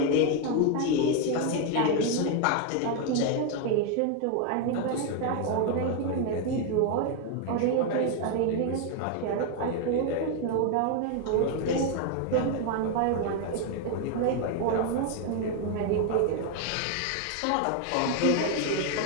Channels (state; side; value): different; both; correlation 0.01